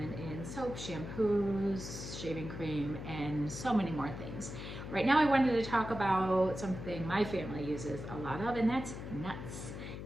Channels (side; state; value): left; noise; hum, 8 dB below the sound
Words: in soap, shampoos, shaving cream, and so many more things. Right now I wanted to talk about something my family uses a lot of, and that's nuts.